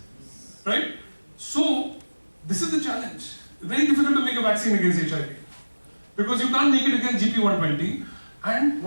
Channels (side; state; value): both; inverted; correlation -1.00